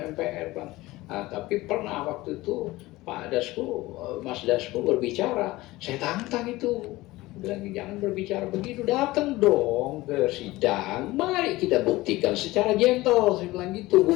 MPR Bang. Nah, tapi pernah waktu itu Pak Dasko, Mas Dasko berbicara, saya tantang itu, bilang jangan berbicara begitu, datang dong ke sidang, mari kita buktikan secara gentle, saya bilang gitu,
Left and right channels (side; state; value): right; quieter; 19.1 dB